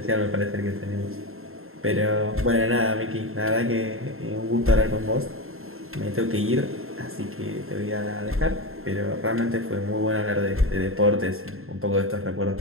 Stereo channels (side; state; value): left; late; 0.61 ms